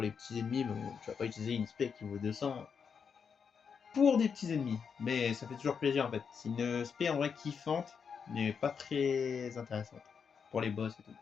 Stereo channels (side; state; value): right; quieter; 6.4 dB